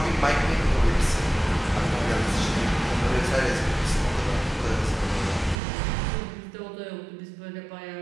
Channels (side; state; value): left; drops out; at 5.6 s